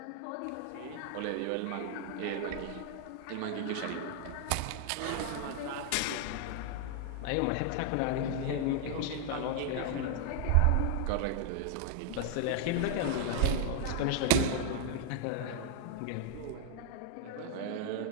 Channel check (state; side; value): different; both; correlation 0.00